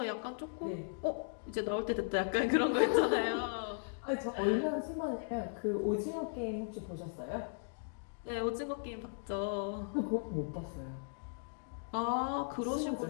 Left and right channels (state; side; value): silent; right; digital silence